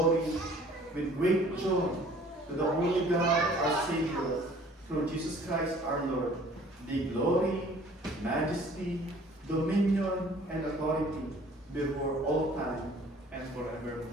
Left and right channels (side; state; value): both; normal; correlation 0.52